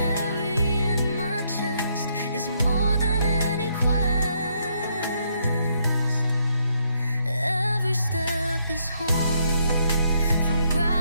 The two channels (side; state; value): both; inverted; correlation -0.73